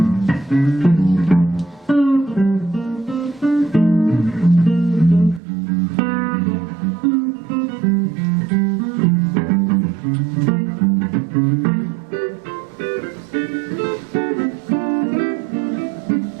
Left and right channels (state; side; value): drops out; left; at 5.4 s